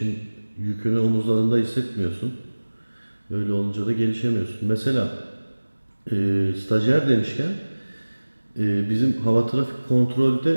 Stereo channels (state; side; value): inverted; both; correlation -1.00